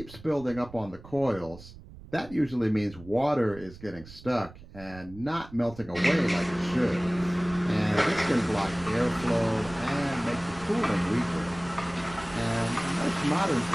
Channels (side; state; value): right; noise; rumble, 18 dB below the sound